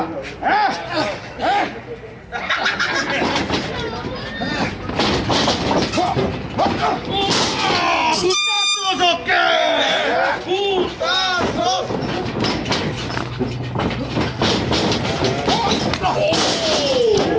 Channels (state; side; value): identical; both; correlation 1.00